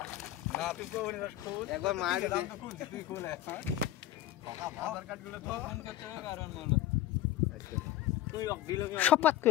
না তুই কোন খোঁজ একবার মার দে তুই কোলে হ্যাঁ আধার কার্ড গুলো তো ফোন করতে হবে কারণ মানে আচ্ছা তুই দিল কি সপাত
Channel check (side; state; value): right; quieter; 13.4 dB